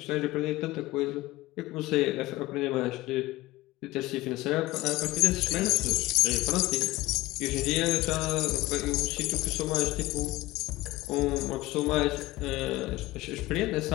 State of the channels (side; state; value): right; quieter; 19.1 dB